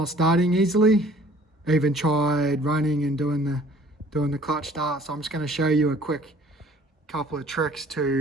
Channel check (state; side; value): normal; both; correlation 0.54